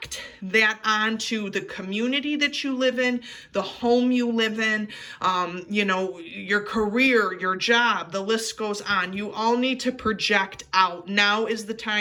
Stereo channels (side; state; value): both; identical; correlation 1.00